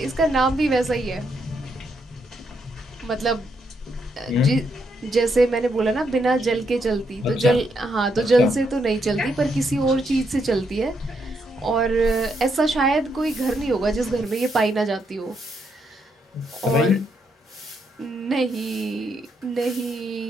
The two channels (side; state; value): both; normal; correlation 0.78